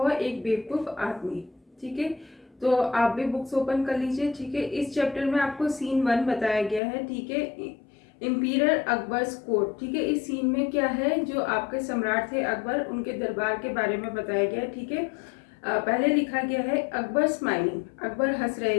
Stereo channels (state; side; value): drops out; right; at 6.8 s